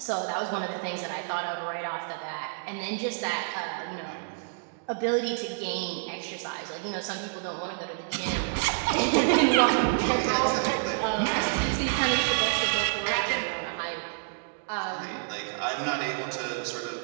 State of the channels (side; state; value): left; silent; digital silence